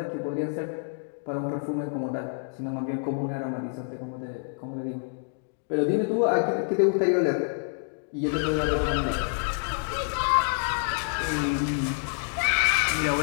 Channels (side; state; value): right; silent; digital silence